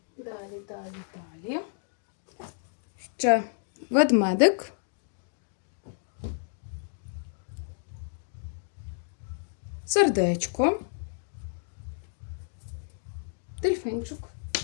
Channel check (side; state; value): right; silent; digital silence